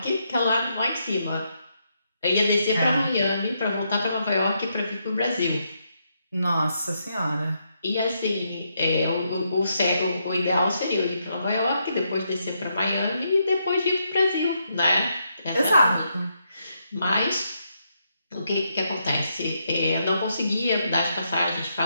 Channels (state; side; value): inverted; both; correlation -0.79